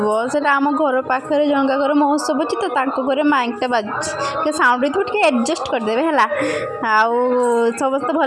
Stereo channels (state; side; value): identical; both; correlation 1.00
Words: ସେଇଟା ଆମ ଘର ପାଖରେ ଜଣଙ୍କ ଘର ମହୋତ୍ସବ ଅଛି ତ, ତାଙ୍କ ଘରେ ମାଇକ୍ଟା ବାଜୁଛି, ଟିକେ ସାଉଣ୍ଡ ହେଇଥିବ, ଟିକେ ଆଡ଼ଜଷ୍ଟ କରିଦେବେ ହେଲା। ଆଉ ସମସ୍ତେ